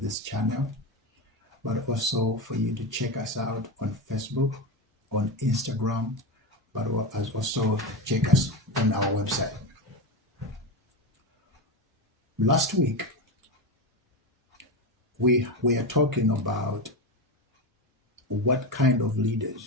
channel, but also for you to check us out on Facebook, on Instagram, but also check us on our website. Last week, we are talking about what kind of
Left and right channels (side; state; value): both; normal; correlation 0.16